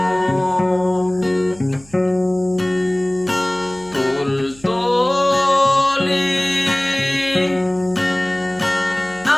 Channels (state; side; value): noise; right; hum, 24 dB below the sound